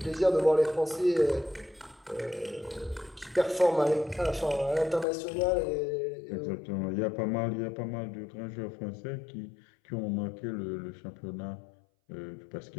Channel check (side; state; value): right; drops out; at 5.1 s